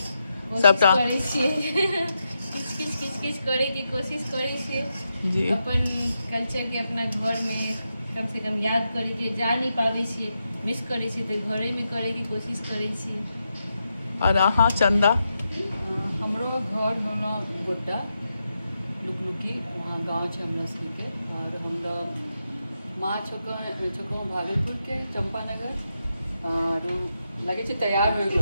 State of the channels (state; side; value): inverted; both; correlation -0.86